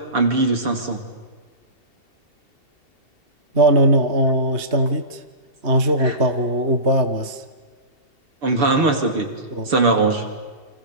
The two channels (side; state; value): left; late; 2.7 ms